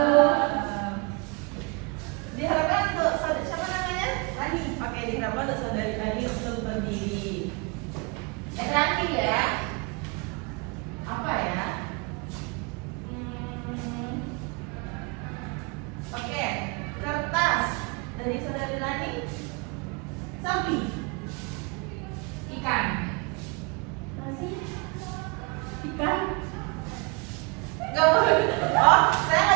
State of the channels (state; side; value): quieter; left; 30.1 dB